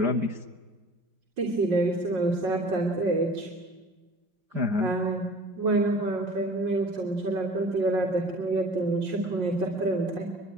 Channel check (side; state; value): left; late; 5.6 ms